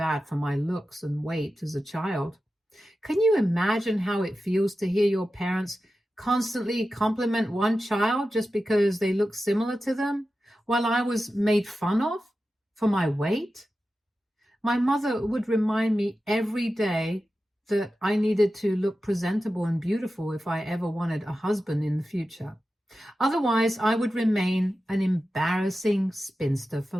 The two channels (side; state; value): both; normal; correlation 0.93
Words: for my looks and weight as a child. Can you imagine how it feels to hear your parents constantly compliment one child just because they look similar to them, while I was made fun of for my weight? My mother would remind me every day that I needed to look presentable and beautiful if I ever wanted a husband in the future. Otherwise, I would remain an embarrassing spinster for